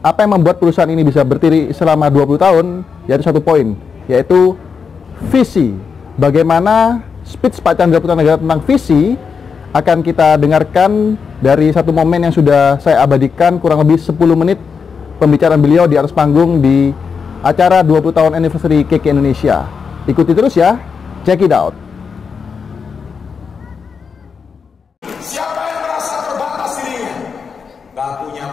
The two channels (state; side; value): quieter; right; 5.8 dB